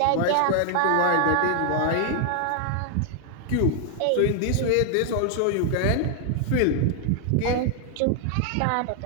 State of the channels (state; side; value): different; both; correlation 0.00